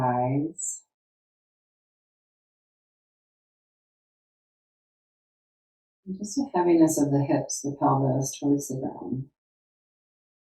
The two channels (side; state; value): both; identical; correlation 1.00